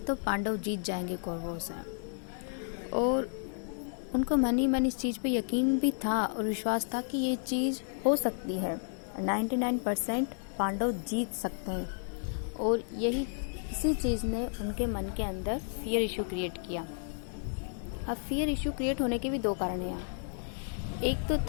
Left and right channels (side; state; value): right; silent; digital silence